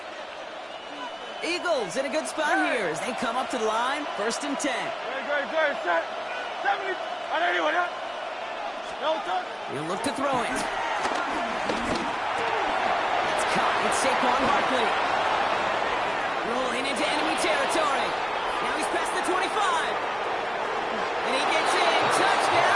Eagles in a good spot here as they come up to the line, 1st and 10. Good. Set. 70. 180. What up? No touch. He'll look to throw it. That's caught. It's Saquon Barkley. Rolling into enemy territory. Now he's past the 25. And he gets in.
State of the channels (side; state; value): both; identical; correlation 1.00